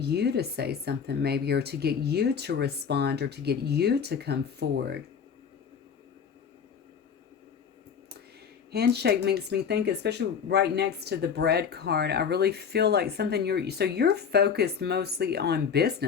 to say something maybe, or to get you to respond, or to get you to come forward. Handshake makes me think, especially right next to the bread card, I really feel like something you're focused mostly on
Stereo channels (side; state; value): right; quieter; 6.9 dB